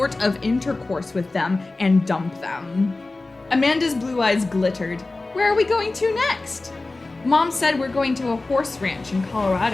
of intercourse with them, and dump them. Amanda's blue eyes glittered. Where are we going to next? Mom said we're going to a horse ranch in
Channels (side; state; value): right; quieter; 3.2 dB